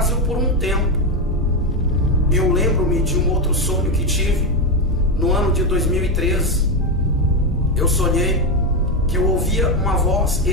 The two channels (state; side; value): normal; both; correlation 0.10